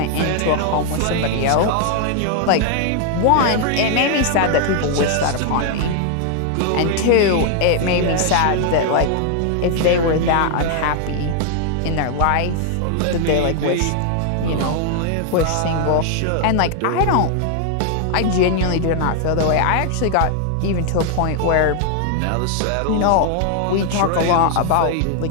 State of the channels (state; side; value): different; both; correlation 0.00